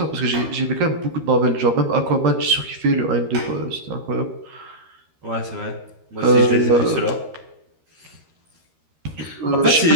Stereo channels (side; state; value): left; late; 13 ms